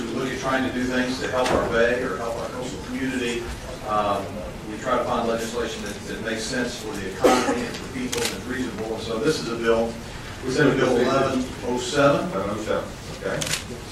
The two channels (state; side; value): identical; both; correlation 1.00